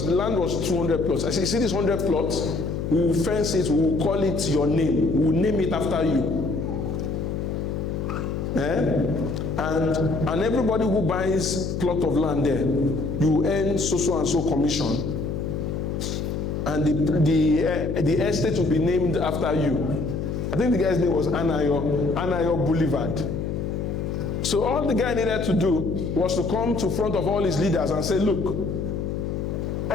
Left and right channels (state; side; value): noise; left; hum, 3 dB below the sound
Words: the land was 200 plots. I said, you see this 100 plots? We will fence it, we will call it your name, we will name it after you. And everybody who buys plot of land there, you earn so and so commission. And the estate will be named after you. I think the guy's name was Anayo Boulevard. So all the guy needed to do was to come to front of all his leaders and say, look,